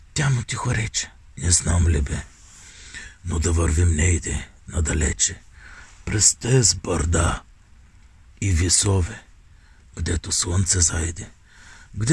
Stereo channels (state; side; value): identical; both; correlation 1.00